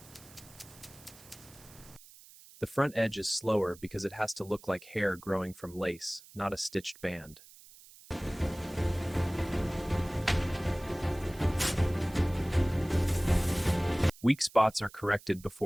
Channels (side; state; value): right; noise; hiss, 22 dB below the sound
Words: The front edge is slower because it has to look like hair growing from lace, not a stitched band. Weak spots are corrected